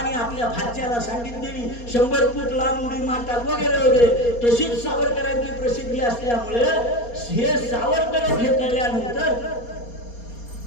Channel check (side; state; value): right; late; 4.2 ms